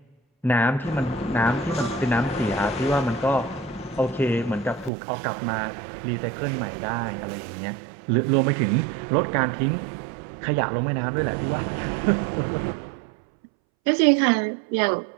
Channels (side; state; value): left; drops out; at 4.9 s